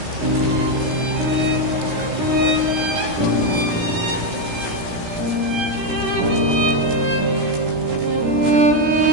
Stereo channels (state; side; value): late; left; 16 ms